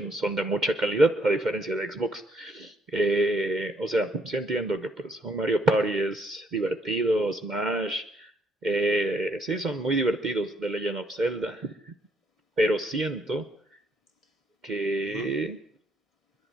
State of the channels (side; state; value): both; normal; correlation 0.70